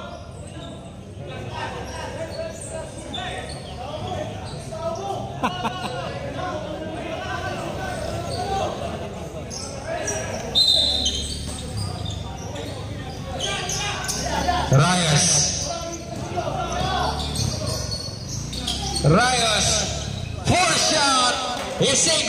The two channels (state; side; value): identical; both; correlation 1.00